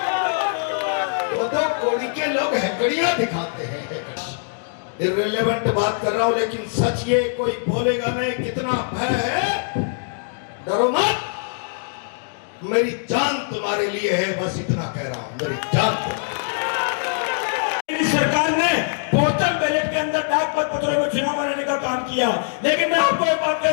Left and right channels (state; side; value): silent; right; digital silence